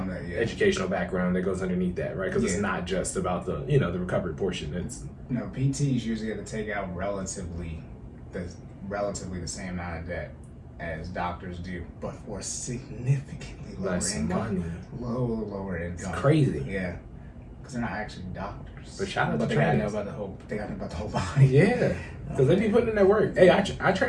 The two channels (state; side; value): identical; both; correlation 1.00